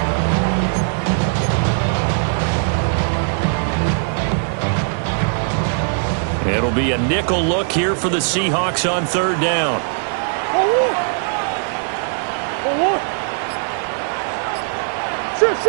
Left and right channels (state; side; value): silent; left; digital silence